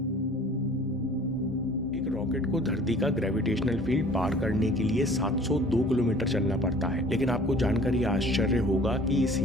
रॉकेट को धरती का ग्रेविटेशनल फील्ड पार करने के लिए 702 किलोमीटर चलना पड़ता है, लेकिन आपको जानकर यह आश्चर्य होगा कि इस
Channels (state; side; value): normal; both; correlation 0.49